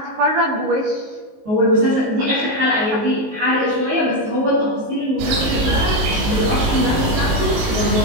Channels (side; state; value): left; late; 19 ms